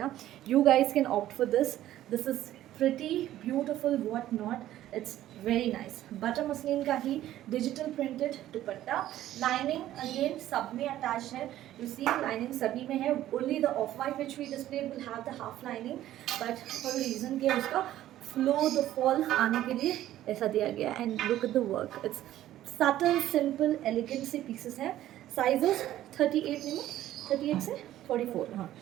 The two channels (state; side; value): quieter; left; 13.4 dB